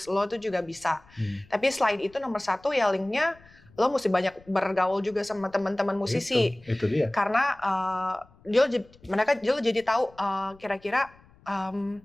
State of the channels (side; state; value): left; noise; rumble, 27 dB below the sound